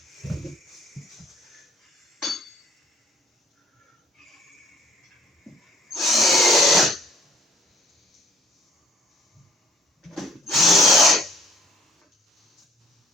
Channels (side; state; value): both; normal; correlation 0.60